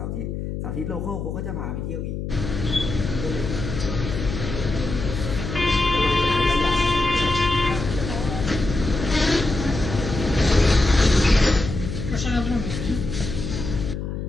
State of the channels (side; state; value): left; noise; hum, 5 dB below the sound